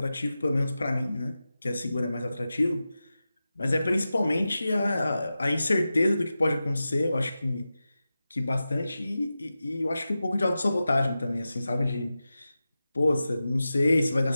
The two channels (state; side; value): inverted; both; correlation -0.93